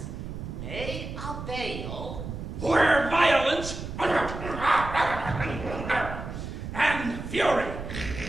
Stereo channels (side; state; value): right; noise; rumble, 8 dB below the sound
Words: may avail Where violence and fury